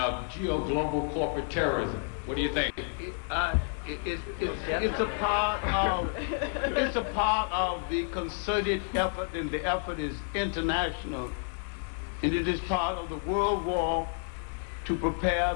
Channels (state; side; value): silent; right; 58 dB below the other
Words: global corporate terrorism. What do you think? It's a part of the concerted effort, and the effort is international, and it is part of the world war to prepare